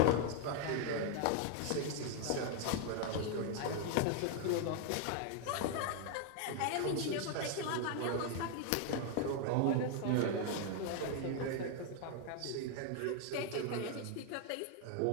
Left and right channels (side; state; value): both; different; correlation 0.00